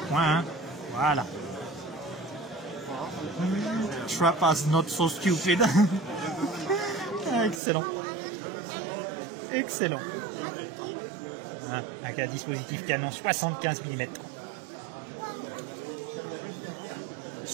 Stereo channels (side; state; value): left; drops out; at 7.6 s